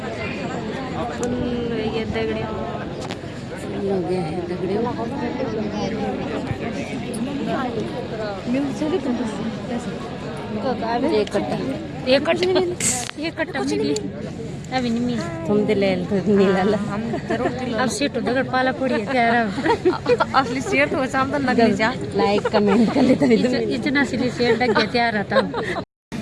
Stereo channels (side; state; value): both; identical; correlation 1.00